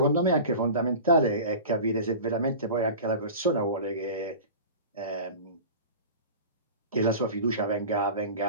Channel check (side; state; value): both; inverted; correlation -0.35